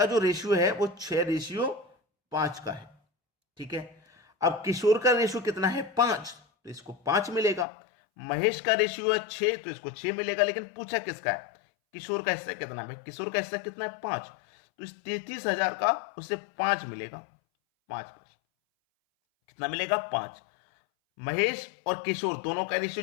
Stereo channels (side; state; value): right; drops out; at 7.7 s